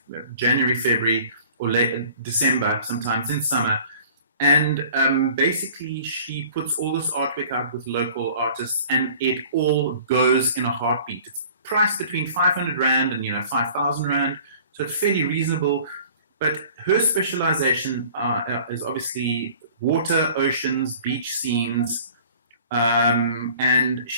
January, February, or late December, sometimes in summer. And basically she puts all this artwork out with local artists, and it all goes in a heartbeat. It's priced between 500 Rand and 5,000 Rand, so it's fairly reasonable. But her specialization is obviously water, oceans, beach scenes, and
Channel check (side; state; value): both; inverted; correlation -0.48